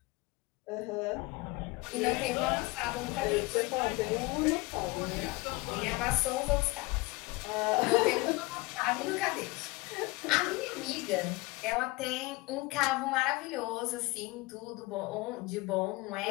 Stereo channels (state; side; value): quieter; right; 23.1 dB